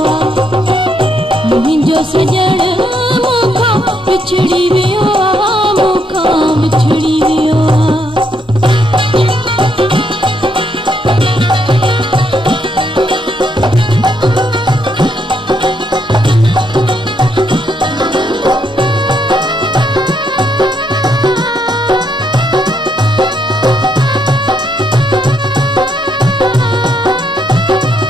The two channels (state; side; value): normal; both; correlation 0.76